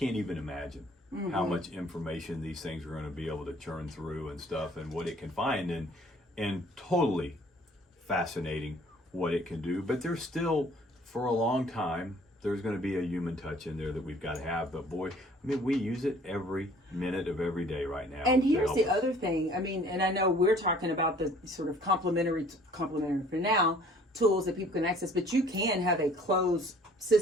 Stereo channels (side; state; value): both; normal; correlation 0.55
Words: even imagine. Mm-hmm. How much information these things are going to be able to churn through and stuff, and what it can find, and totally fascinating what it can do. But there's still, for a long time, there's going to be a human touch in there that we've got to have. But boy, I mean, we use it every minute of every day right now. And here's the other thing. I mean, and I know we're talking about the sort of complementary for now tools that people can access, but you can have a closed